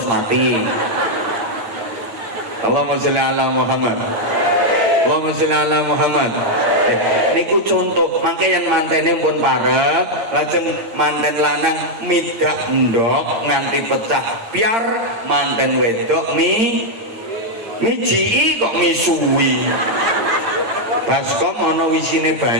mati. Allahumma sholli ala Muhammad. Allahumma sholli ala Muhammad. Niku contoh, mangke yang mantene pun parek, lajeng manten lanang midak ndok nganti pecah biar manten wedok mijiki kok misuwi. Baskom ana wisine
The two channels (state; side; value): late; left; 8.8 ms